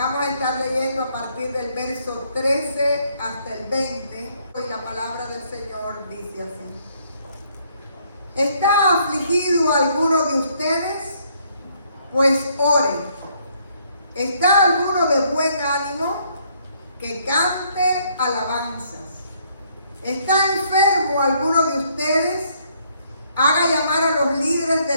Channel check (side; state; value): both; inverted; correlation -0.68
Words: a estar leyendo a partir del verso 13 hasta el 20. Y la palabra del Señor dice así: ¿Está afligido alguno de ustedes? Pues ore. ¿Está alguno de buen ánimo? Que cante alabanzas. ¿Está enfermo alguno de ustedes? Haga llamar a los líderes de